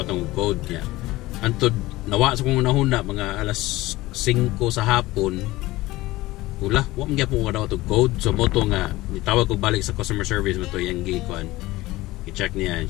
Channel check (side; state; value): right; quieter; 18.6 dB